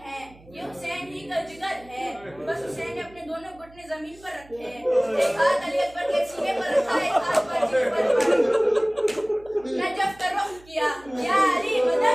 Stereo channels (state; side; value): noise; right; hum, 24 dB below the sound